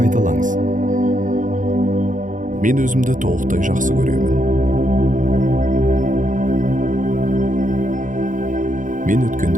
Мен өзімді толықтай жақсы көремін. Мен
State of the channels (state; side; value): late; left; 0.38 ms